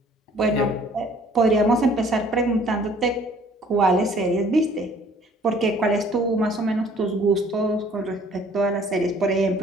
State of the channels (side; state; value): both; normal; correlation 0.56